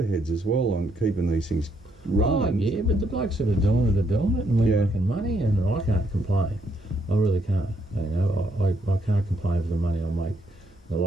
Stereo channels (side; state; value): both; normal; correlation 0.74